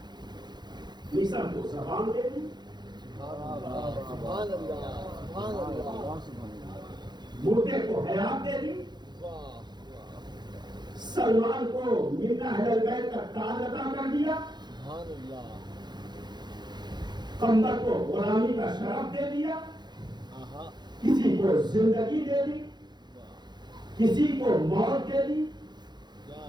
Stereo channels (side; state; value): left; late; 0.21 ms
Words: مصر کو زبان دے دی، مردے کو حیات دے دی، سلمان کو منا اہل البیت کا تاج عطا کر دیا، قمر کو غلامی کا شرف دے دیا، کسی کو زندگی دے دی، کسی کو موت دے دی،